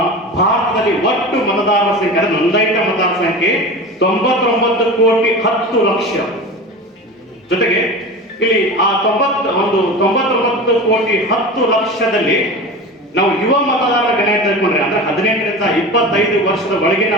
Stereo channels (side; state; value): both; normal; correlation 0.31